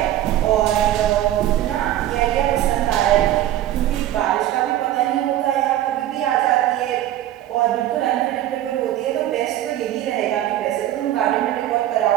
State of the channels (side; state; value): left; quieter; 13.0 dB